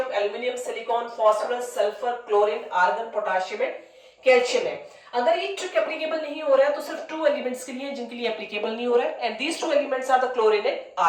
aluminium, silicon, phosphorus, sulphur, chlorine, argon, potassium and calcium है. अगर ये ट्रिक एप्लीकेबल नहीं हो रहा है तो सिर्फ 2 एलिमेंट्स के लिए जिनके लिए एप्लीकेबल नहीं हो रहा है, and these 2 elements are the chlorine and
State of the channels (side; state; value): both; identical; correlation 1.00